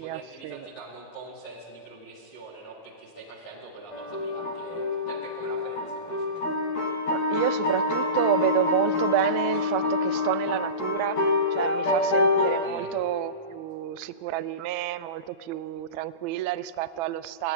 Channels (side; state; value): right; late; 12 ms